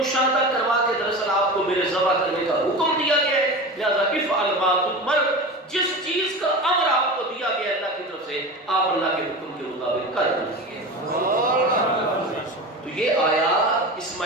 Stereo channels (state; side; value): normal; both; correlation 0.29